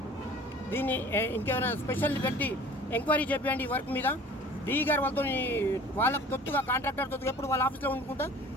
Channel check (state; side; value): normal; both; correlation 0.46